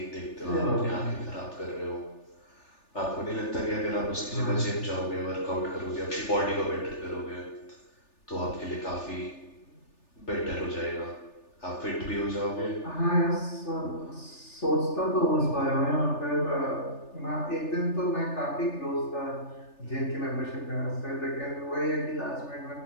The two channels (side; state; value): right; late; 3.4 ms